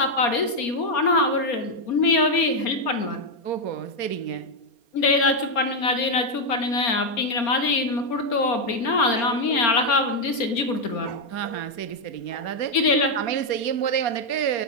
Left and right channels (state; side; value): late; right; 4.3 ms